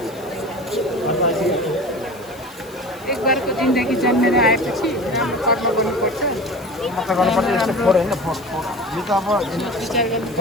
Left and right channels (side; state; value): left; noise; hiss, 22 dB below the sound